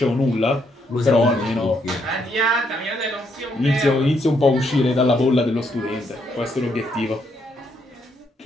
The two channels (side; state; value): both; normal; correlation 0.74